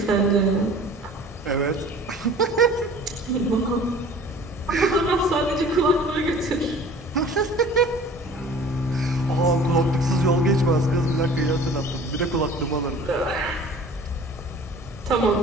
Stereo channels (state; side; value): normal; both; correlation 0.46